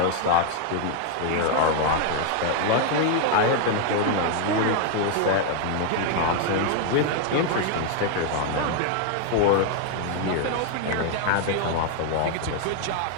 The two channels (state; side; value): different; both; correlation 0.00